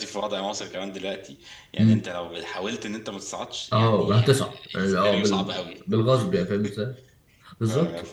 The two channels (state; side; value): identical; both; correlation 1.00